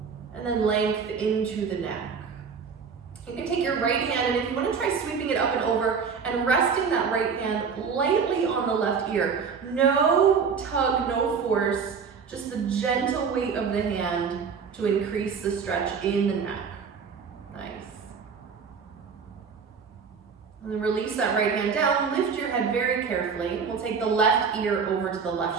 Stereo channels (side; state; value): left; quieter; 5.9 dB